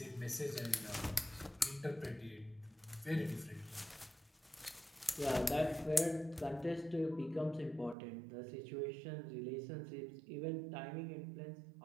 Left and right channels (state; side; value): drops out; left; at 8.0 s